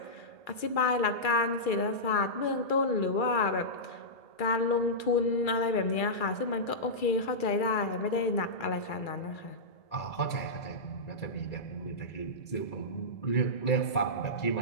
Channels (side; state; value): right; late; 2.3 ms